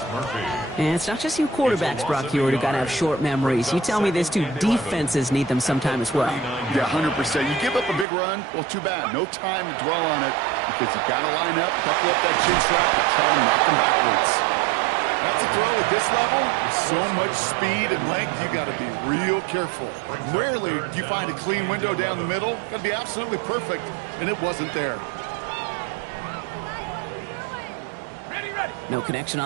And it's not just you quarterbacks, Brock Hewitt, who got to have short memories. You tell me this too, defenses need them sometime as well. Yeah, 100%. You give up a big run, well, too bad. No time to dwell on it because you got to line up, buckle up that chin strap, and try to knock them backwards. That's a throw at this level. With so much speed and length, you got to be real careful. Rarely do you find a clean window down the middle. Got to be absolutely perfect, and it wasn't there. No connection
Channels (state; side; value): drops out; left; at 8.1 s